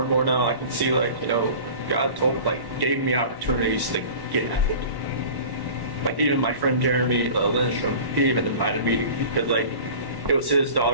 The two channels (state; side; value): late; left; 1.1 ms